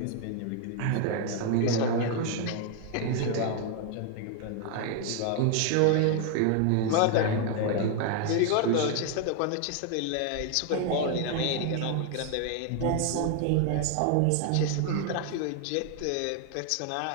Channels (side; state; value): both; different; correlation 0.00